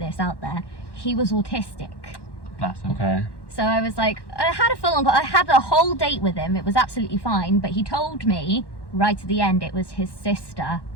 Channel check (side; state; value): right; late; 1.1 ms